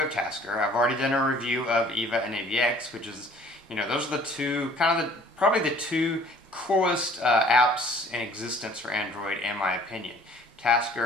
Tasker. I've already done a review of EVA and AVX, which is, those are the two, probably the two coolest apps in existence for Android, in my opinion.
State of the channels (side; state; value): both; normal; correlation 0.54